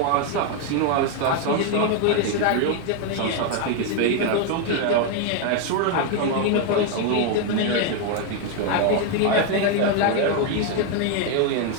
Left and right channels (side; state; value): both; different; correlation 0.01